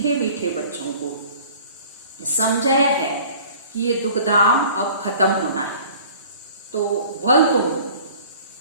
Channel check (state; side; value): inverted; both; correlation -0.47